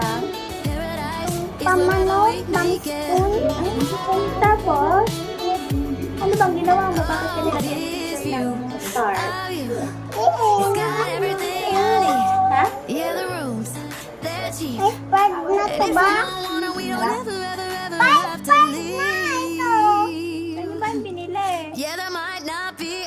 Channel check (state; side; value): identical; both; correlation 1.00